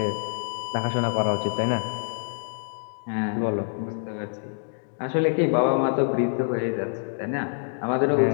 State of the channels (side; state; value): right; silent; digital silence